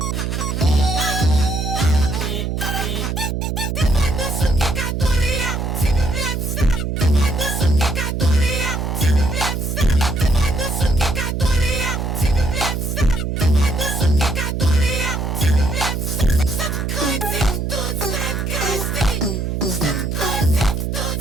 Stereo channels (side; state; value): right; noise; hum, 1 dB below the sound